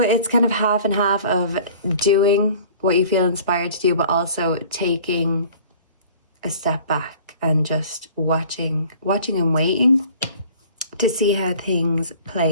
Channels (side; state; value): both; inverted; correlation -0.48